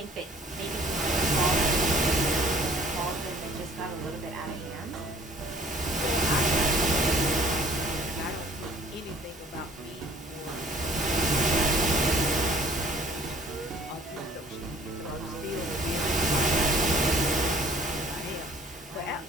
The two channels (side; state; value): both; normal; correlation 0.54